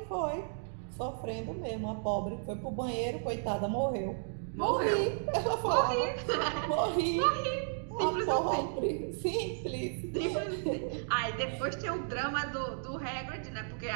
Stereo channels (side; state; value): left; silent; digital silence